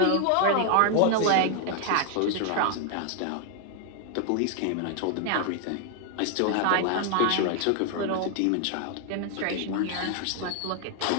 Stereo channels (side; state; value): both; different; correlation 0.00